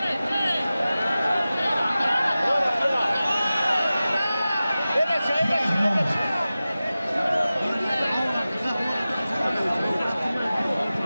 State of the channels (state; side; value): inverted; both; correlation -0.96